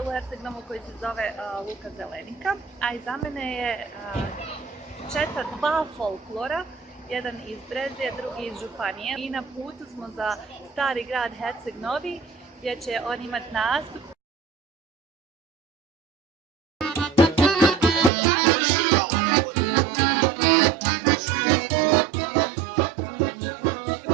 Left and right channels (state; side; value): drops out; left; at 18.1 s